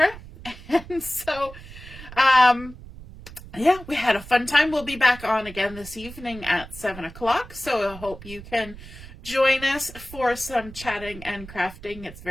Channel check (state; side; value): noise; right; rumble, 16 dB below the sound